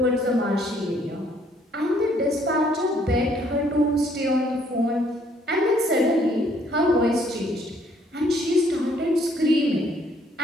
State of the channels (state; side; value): normal; both; correlation 0.65